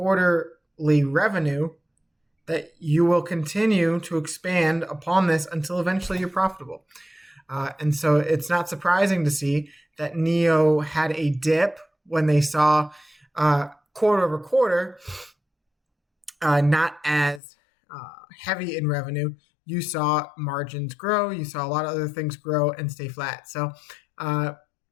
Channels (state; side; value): drops out; right; at 17.4 s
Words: revenue, that you will continue to expand upon this until eventually you're profitable. And so it's not surprising to see that Nio had a dip when they saw quarter over quarter, not as heavy in revenue. You saw margins grow. You saw a lot of other things grow and stay flat. So